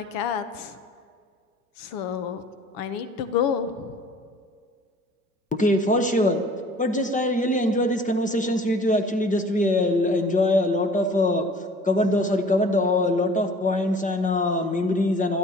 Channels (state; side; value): normal; both; correlation 0.49